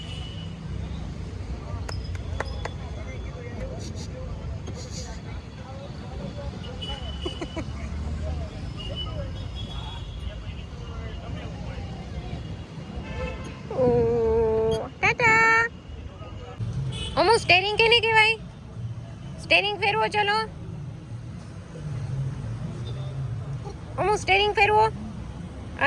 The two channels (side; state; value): both; identical; correlation 1.00